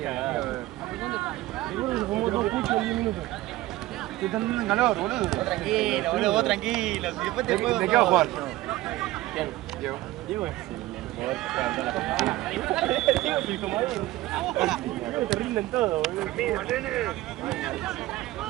Estoy entrando en calor, boludo. Tranquilo, boludo, vos tranquilo. Si después te juego. ¿De qué va a jugar? ¿Quién? Diego. Diego es el jugador que levantó la Diego es el comodín. Diego te rinden todo, boludo.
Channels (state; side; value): quieter; left; 17.2 dB